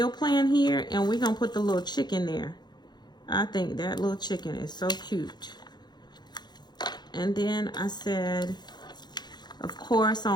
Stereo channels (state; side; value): late; right; 0.21 ms